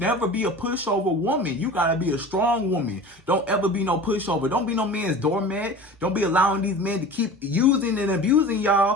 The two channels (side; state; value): both; normal; correlation 0.37